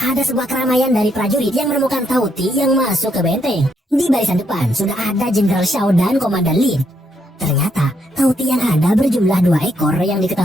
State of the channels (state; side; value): normal; both; correlation 0.76